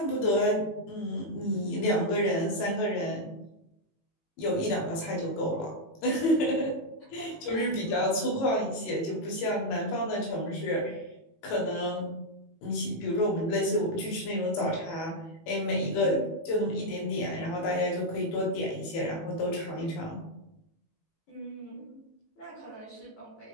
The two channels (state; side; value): late; right; 18 ms